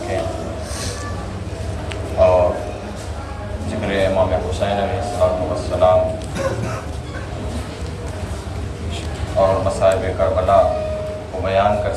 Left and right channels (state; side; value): identical; both; correlation 1.00